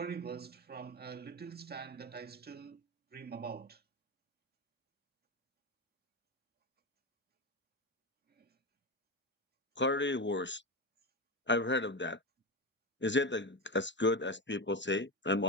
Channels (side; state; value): both; normal; correlation 0.18